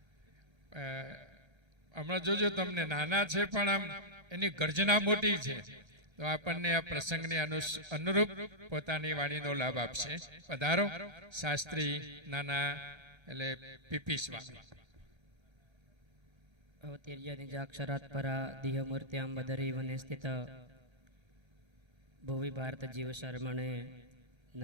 હમણાં જોજો, તમને નાના છે પણ આમ એની ગર્જના મોટી છે. તો આપણને આ પ્રસંગને અનુરૂપ પોતાની વાણીનો લાભ આપશે. પધારો શાસ્ત્રી નાના એટલે પીપી સ્વામી. અવતીર્ય નિજાક્ષરાત પરા દિહમૂર્ત્યામ બદરી વને સ્થિત ભુવિ ભારત જીવ શર્મણે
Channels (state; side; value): late; left; 1.3 ms